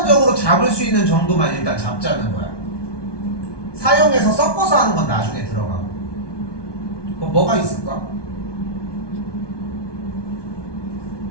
잡을 수 있는 정도만 일단 잡자는 거야. 사용해서 섞어서 하는 건 나중에 들어가고. 그럼 뭐가 있을까?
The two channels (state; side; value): late; right; 1.2 ms